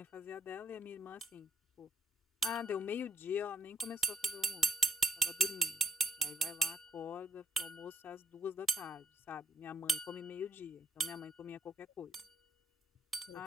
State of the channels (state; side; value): normal; both; correlation 0.72